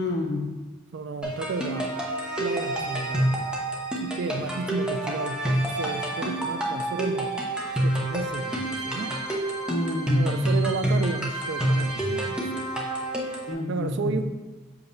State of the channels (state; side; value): normal; both; correlation 0.56